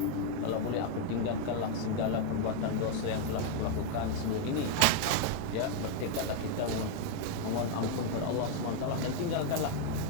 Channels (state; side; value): different; both; correlation 0.00